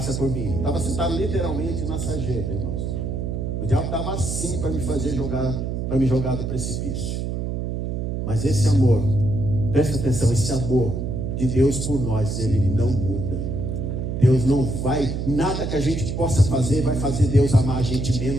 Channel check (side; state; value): right; noise; hum, 3 dB below the sound